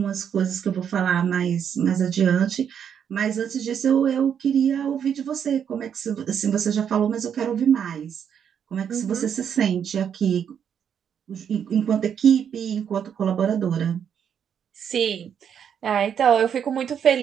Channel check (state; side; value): quieter; left; 8.2 dB